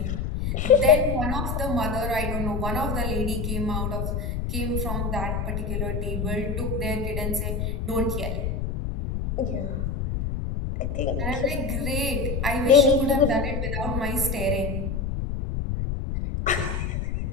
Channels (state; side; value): noise; left; rumble, 1 dB below the sound